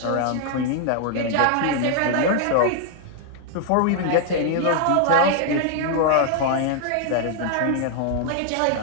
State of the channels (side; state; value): both; different; correlation 0.00